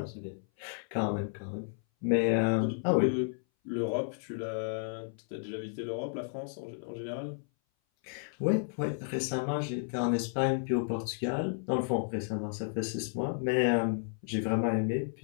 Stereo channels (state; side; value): silent; right; 56 dB below the other